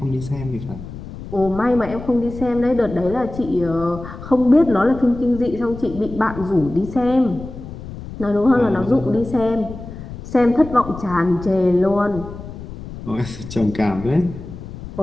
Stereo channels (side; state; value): left; noise; rumble, 12 dB below the sound